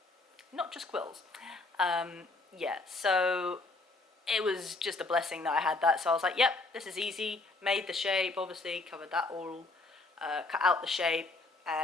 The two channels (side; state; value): right; quieter; 3.3 dB